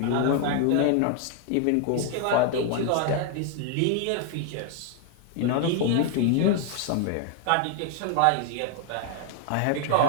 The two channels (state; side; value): different; both; correlation 0.00